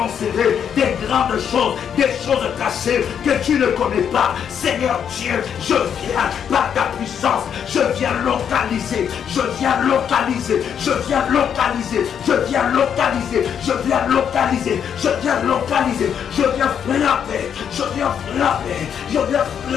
des grandes choses, des choses cachées que tu ne connais pas. Seigneur Dieu, je viens par ta puissance, je viens localiser, je viens localiser, je viens localiser, je viens localiser, je viens localiser, je viens localiser, je viens frapper, je viens frapper, je viens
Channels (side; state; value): right; quieter; 8.2 dB